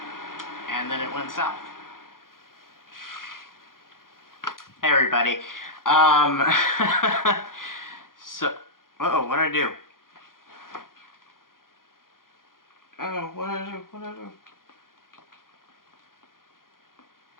And then it went south. Hey everybody. Um, so, uh-oh, what'd I do? Oh, what'd I do? What'd I do?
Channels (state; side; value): late; right; 0.91 ms